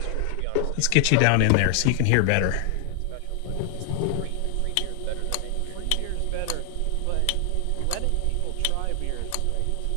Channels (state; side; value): different; both; correlation 0.00